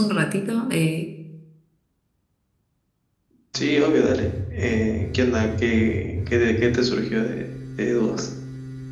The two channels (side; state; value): both; identical; correlation 1.00